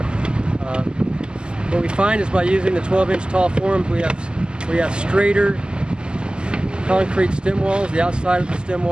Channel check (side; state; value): left; late; 0.048 ms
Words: What we find is by using the 12-inch tall forms, we have straighter concrete stem walls, the outside of the stem